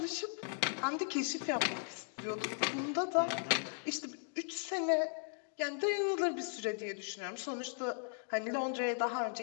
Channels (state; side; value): silent; right; 53 dB below the other